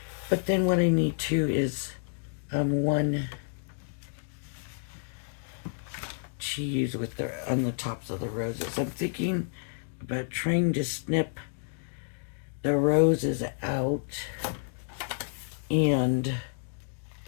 But then what I need too is one to use with on the tops of the roses. I'm thinking about trying to snip the roses out and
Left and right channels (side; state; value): right; silent; digital silence